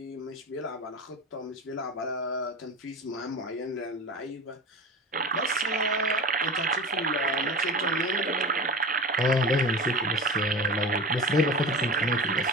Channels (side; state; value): both; normal; correlation 0.31